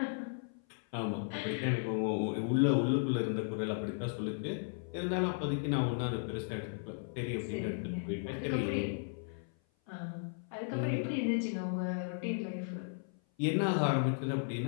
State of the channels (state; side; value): silent; right; 54 dB below the other